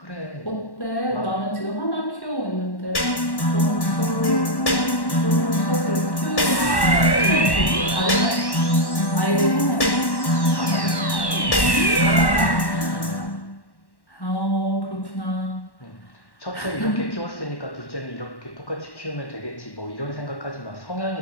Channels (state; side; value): late; right; 1.1 ms